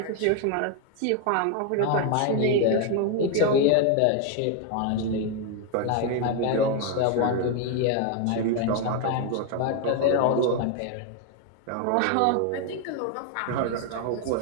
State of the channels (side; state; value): both; different; correlation 0.01